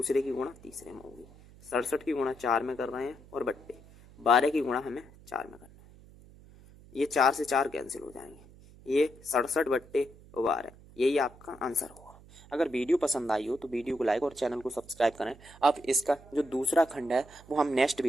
की गुणा तीसरे में होगी। 67 की गुणा 4 में कर रहे हैं और बट्टे 12 की गुणा हमें 4 में करना है। ये 4 से 4 कैंसिल हो जाएंगे ये 67 बट्टे 12 यही आपका आंसर होगा। अगर वीडियो पसंद आई हो तो वीडियो को लाइक और चैनल को सब्सक्राइब करें। अब इसका जो दूसरा खंड है वो हम नेक्स्ट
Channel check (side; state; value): right; noise; hum, 22 dB below the sound